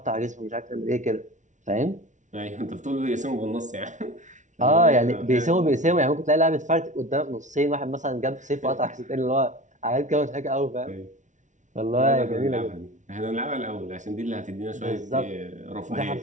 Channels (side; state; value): left; late; 0.36 ms